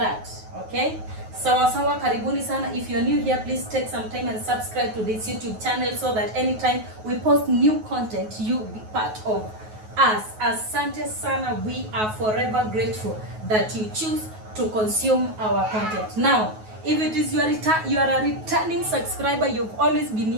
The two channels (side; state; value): left; late; 9.3 ms